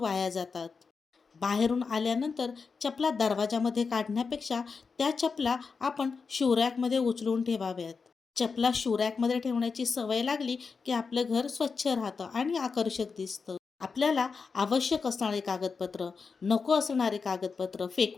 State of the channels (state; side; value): quieter; right; 5.0 dB